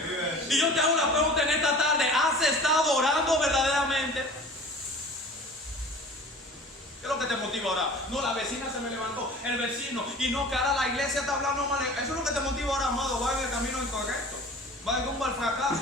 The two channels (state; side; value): normal; both; correlation 0.42